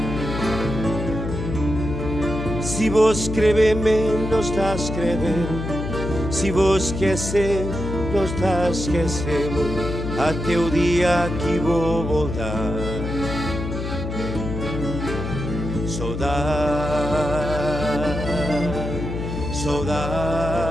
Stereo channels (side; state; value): left; noise; hum, 5 dB below the sound